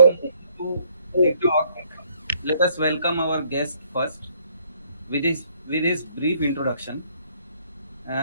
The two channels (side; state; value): both; inverted; correlation -0.65